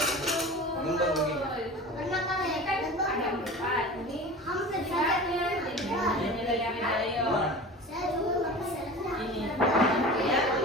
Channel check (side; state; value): both; normal; correlation 0.35